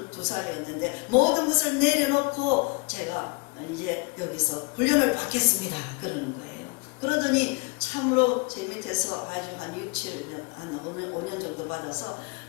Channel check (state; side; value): quieter; right; 29.5 dB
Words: 모든 것을 내려놓고 제가 이제 여기서 훈련을 받겠습니다 그러는 거예요. 그러더니 참으로 제 밑에서 아주 한 5년 정도 받아서